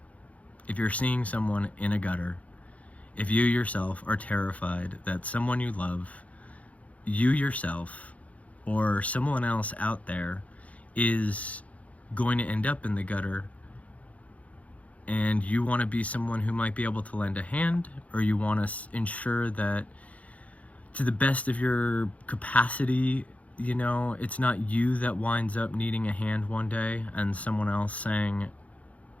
if you're seeing someone in a gutter, if you yourself are terrified that someone you love, you yourself, or someone else out there is going to end up in the gutter, and you want to be someone who might be able to lend a hand, or you want to ensure that to the best of your capacity, you know, it's not you that winds up needing a hand one day and someone else saying,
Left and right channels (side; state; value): right; late; 0.067 ms